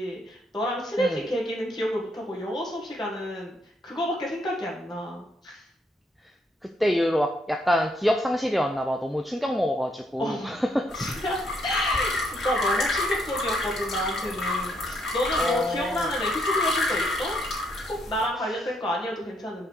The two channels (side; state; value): both; normal; correlation 0.73